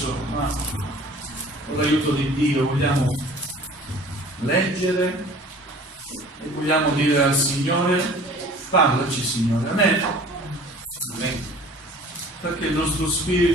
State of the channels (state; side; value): normal; both; correlation 0.47